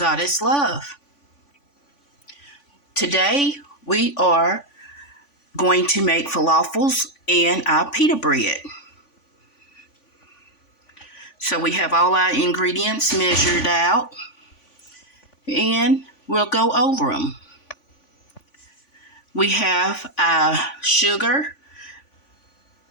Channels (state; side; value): late; right; 3.5 ms